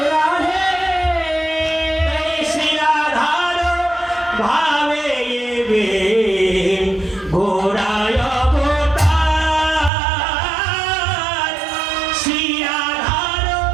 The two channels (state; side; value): drops out; left; at 9.9 s